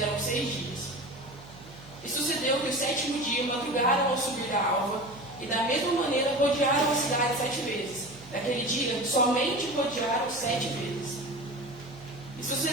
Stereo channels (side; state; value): right; noise; hum, 19 dB below the sound